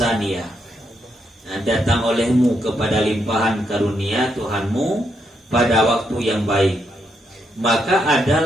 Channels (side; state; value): both; normal; correlation 0.79